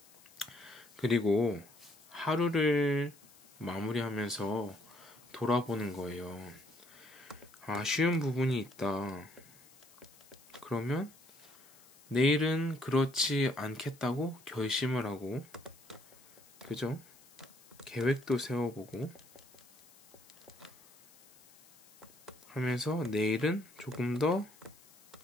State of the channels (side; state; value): left; noise; hiss, 25 dB below the sound